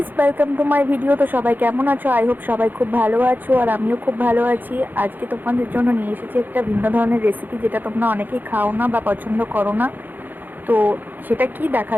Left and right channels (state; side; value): late; left; 0.088 ms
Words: welcome to my video. তো সবাই কেমন আছো? আই হোপ সবাই খুব ভালো আছো, আর আমিও খুব ভালো আছি। আজকে তোমাদের জন্য নিয়ে এসেছি একটা ভিন্ন ধরনের রেসিপি, যেটা তোমরা অনেকেই খাও না বা পছন্দ করো না। তো সেটা কি